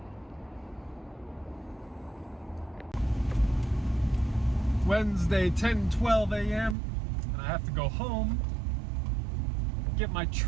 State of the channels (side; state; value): left; drops out; at 6.8 s